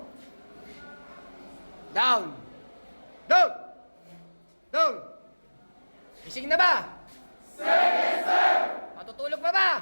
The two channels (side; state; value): both; inverted; correlation -1.00